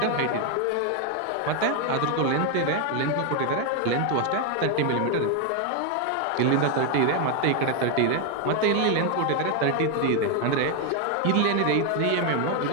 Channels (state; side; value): different; both; correlation 0.01